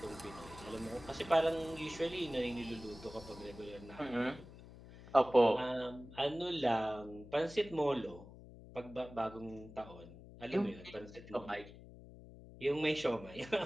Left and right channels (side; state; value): left; noise; hum, 17 dB below the sound